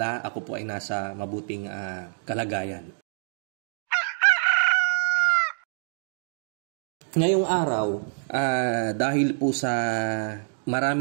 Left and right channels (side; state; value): left; silent; digital silence